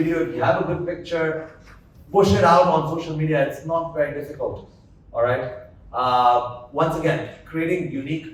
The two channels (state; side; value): identical; both; correlation 1.00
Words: if you have a good picture, push it out on social media. It's not very difficult. All right. Once again, creating